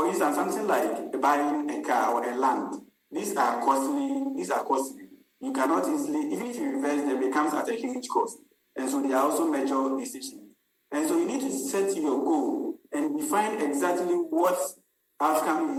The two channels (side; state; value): both; identical; correlation 1.00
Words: instance, something like buying a car or a land. These are costly. You cannot easily, even if you invest them, it comes at a huge cost. And so they are also major decisions. And so you need to set your goal and define exactly what outcome